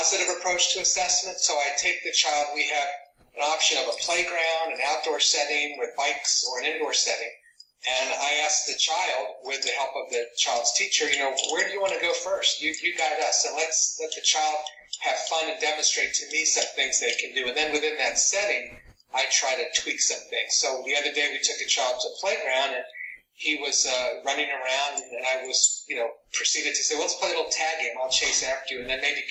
approach to assessment. So I take the child, we have an option of a playground, an outdoor setting with bikes, or an indoor setting. And I ask the child, with the help of the child's teacher, where do you want to go first? You guide us, and let's let the child have fun and demonstrate to me some things they can do. And then within that setting, I try to tweak some things. So the other day we took a child to a playground, and he was running around, and I was, proceeded to say, well, let's play a little tag game. I'll chase after you, and then maybe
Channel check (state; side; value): identical; both; correlation 1.00